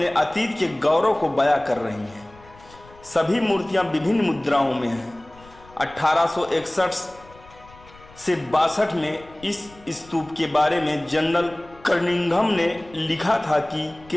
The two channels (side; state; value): left; noise; rumble, 23 dB below the sound